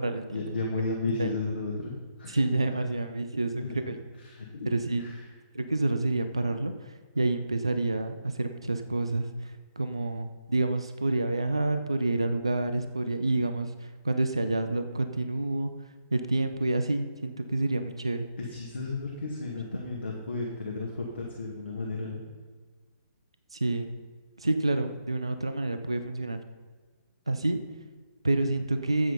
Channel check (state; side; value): inverted; both; correlation -0.87